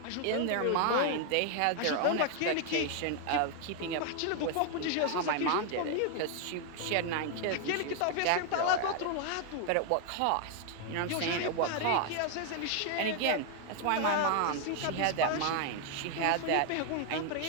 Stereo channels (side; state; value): both; different; correlation 0.00